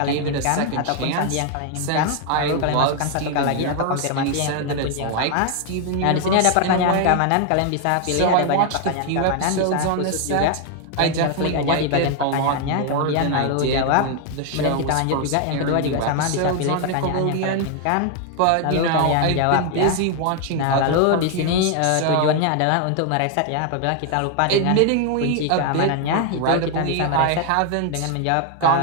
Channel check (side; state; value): both; different; correlation 0.00